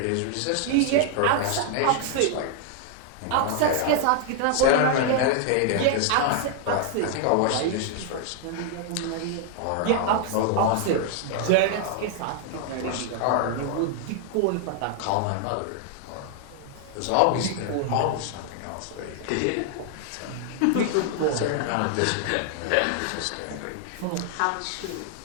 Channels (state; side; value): different; both; correlation 0.00